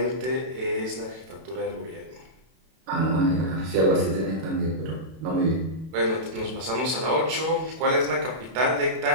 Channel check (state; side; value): late; left; 32 ms